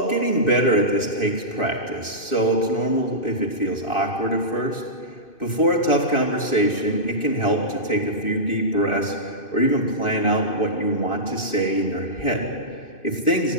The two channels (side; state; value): right; late; 2.6 ms